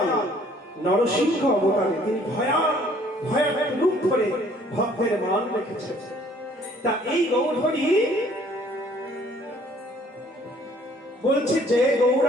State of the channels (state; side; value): normal; both; correlation 0.59